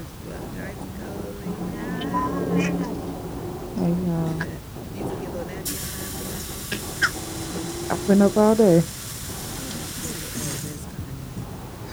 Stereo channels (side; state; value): both; identical; correlation 1.00